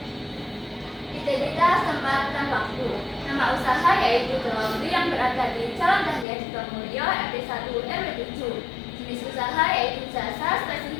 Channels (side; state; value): right; drops out; at 6.2 s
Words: Identitas tempat dan waktu. Nama usaha yaitu Laundry yang berada di Jalan Dahlia Sukamulyo RT 1 RW 7. Jenis usaha yaitu jasa,